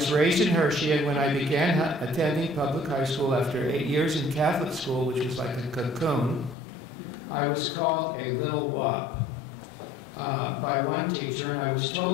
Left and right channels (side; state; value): right; drops out; at 6.6 s